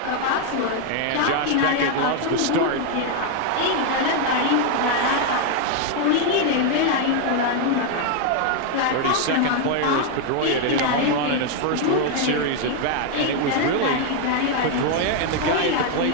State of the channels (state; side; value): different; both; correlation 0.01